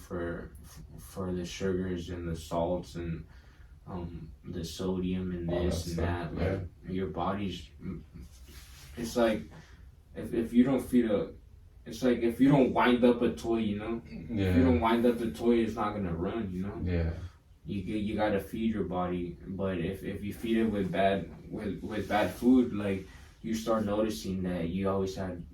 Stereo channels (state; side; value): identical; both; correlation 1.00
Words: for the sugars and the salts and the sodium and this and that. Like your body's, it's like if you don't feed it's like if you don't wind up a toy, if you don't wind up the toy, it's not gonna run. You gotta feed your body, but if you feed it with bad food, like you start noticing that you always have